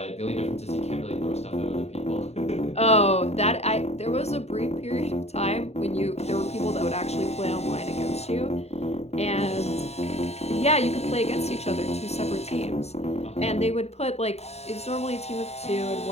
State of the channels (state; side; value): late; right; 0.31 ms